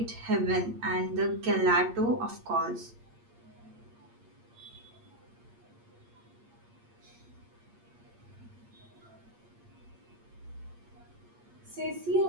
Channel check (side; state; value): left; late; 8.6 ms